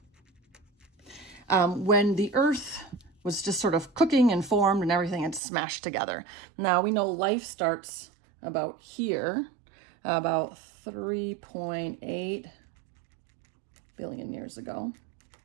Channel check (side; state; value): left; drops out; at 5.4 s